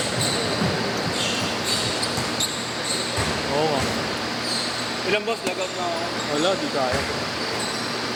Oo nga. Ilang boss, lagot na ako. Wala, di kaya.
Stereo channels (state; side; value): identical; both; correlation 1.00